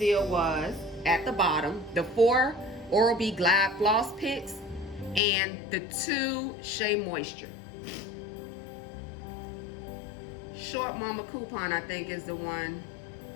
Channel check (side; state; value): right; drops out; at 5.2 s